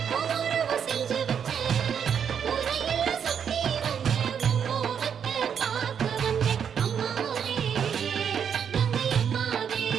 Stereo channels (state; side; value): quieter; left; 7.7 dB